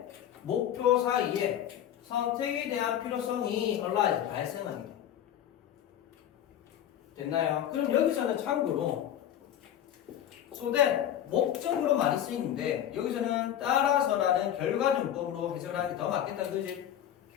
목표 사이에 선택에 대한 필요성이 arise, 발생하게 돼. 됐나요? 그럼 여기서는 참고로 so that 목적으로 많이 쓰이는데 여기서는 따라서라는 결과정법으로 해석하는 게 더 맞겠다, 그지?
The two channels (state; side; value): quieter; right; 10.8 dB